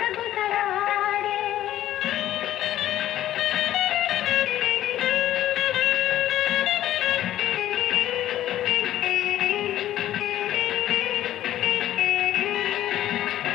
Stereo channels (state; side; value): quieter; right; 13.1 dB